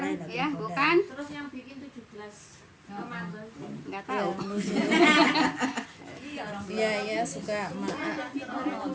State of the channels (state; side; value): identical; both; correlation 1.00